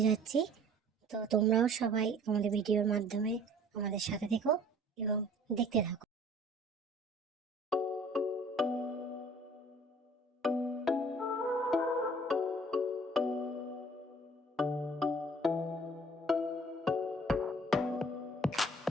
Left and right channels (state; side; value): normal; both; correlation 0.52